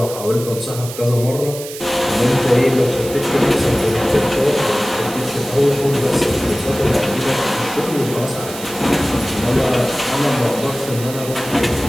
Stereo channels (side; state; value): right; noise; hiss, 12 dB below the sound